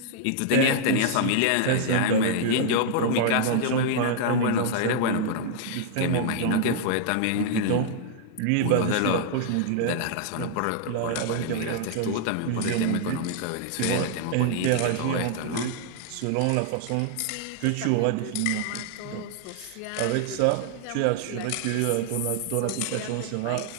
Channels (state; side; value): different; both; correlation -0.01